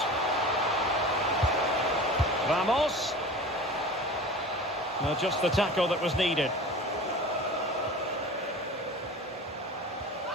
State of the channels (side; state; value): both; normal; correlation 0.36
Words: Ramos. Now just the tackle that was needed.